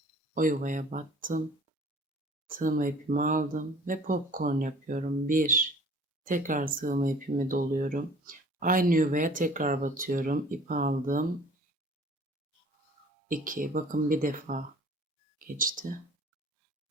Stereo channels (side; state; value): both; normal; correlation 0.50